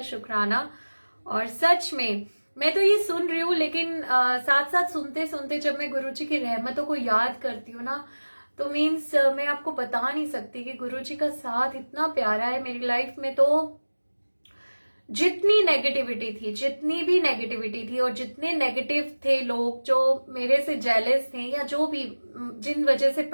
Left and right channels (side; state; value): both; inverted; correlation -1.00